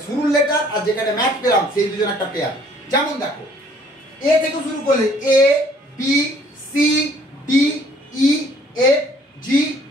শুরুর লেটার আর যেখানে ম্যাচ পেলাম সেই দুজন একটা পেয়ার। যেমন দেখো এ থেকে শুরু করলে A B C D E F G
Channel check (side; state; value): both; normal; correlation 0.59